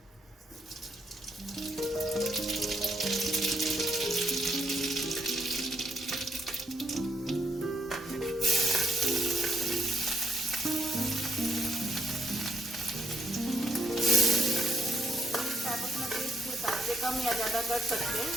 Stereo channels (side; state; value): both; normal; correlation 0.76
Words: कम या ज़्यादा कर सकते हैं,